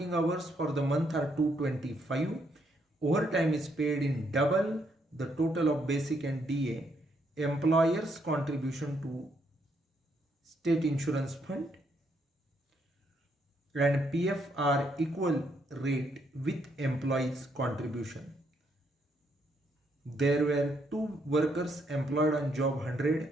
hours for the month are 225. Overtime is paid in double the total of basic and DA. Employers contribution to state insurance fund and PF are equal rate with employees contribution. There were two workers employed on job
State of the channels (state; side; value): normal; both; correlation 0.74